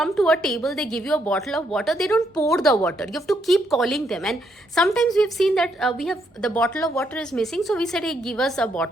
to a table, they give you a bottle of water. They don't pour the water. You have to keep calling them. And sometimes we've seen that the bottle of water is missing. So we said, hey, give us a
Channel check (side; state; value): both; normal; correlation 0.75